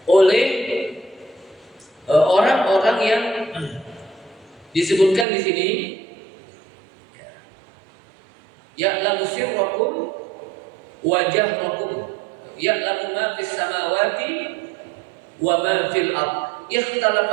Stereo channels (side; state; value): left; drops out; at 5.2 s